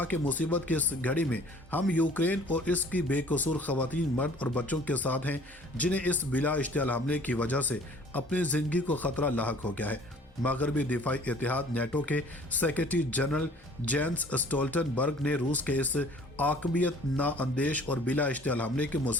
کہ مصیبت کی اس گھڑی میں ہم یوکرین اور اس کی بے قصور خواتین، مرد اور بچوں کے ساتھ ہیں جنہیں اس بلا اشتعال حملے کی وجہ سے اپنی زندگی کو خطرہ لاحق ہو گیا ہے۔ مغربی دفاعی اتحاد نیٹو کے سیکرٹری جنرل جینس اسٹولٹنبرگ نے روس کے اس عاقبیت نااندیش اور بلا اشتعال حملے کی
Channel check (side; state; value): both; normal; correlation 0.52